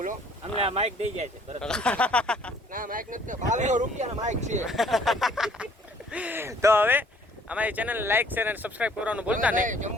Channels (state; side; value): normal; both; correlation 0.58